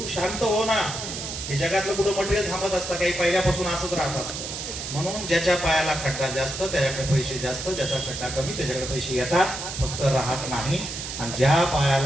शांत हो ना. हे जगातलं कुठं मटेरियल थांबत असतं, काही पहिल्यापासून असंच राहत असतं. म्हणून ज्याच्या पायाला खड्डा जास्त त्याच्याकडे पैसे जास्त, ज्याचा खड्डा कमी त्याच्याकडे पैसे येतात, फक्त राहत नाही. आणि ज्या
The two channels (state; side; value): noise; right; hiss, 7 dB below the sound